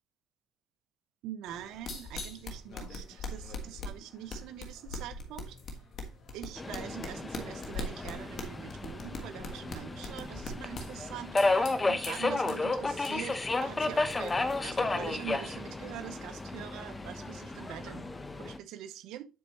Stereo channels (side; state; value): both; normal; correlation 0.85